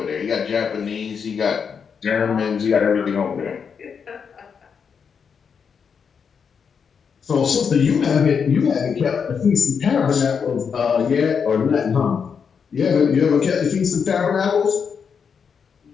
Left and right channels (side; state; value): right; quieter; 6.5 dB